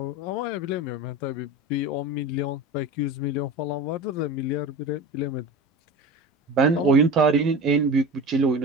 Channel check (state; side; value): normal; both; correlation 0.31